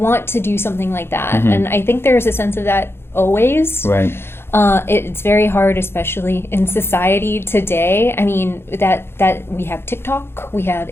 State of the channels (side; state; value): right; late; 0.11 ms